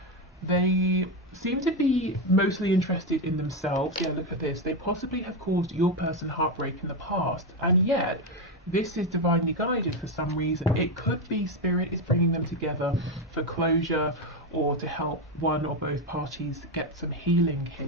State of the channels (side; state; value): both; normal; correlation 0.10